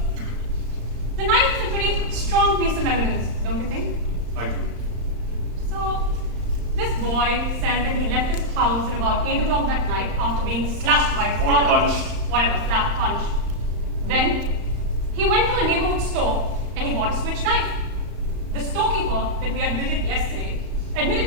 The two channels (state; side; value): late; left; 34 ms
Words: the knife is a pretty strong piece of evidence, don't you think? I agree. So, this boy says that he left his house at about 8 o'clock that night after being slashed by his Or father. punched. Whatever, slapped, punched. Then, he went to a neighborhood store and he bought a switch knife. The storekeeper that we admitted yesterday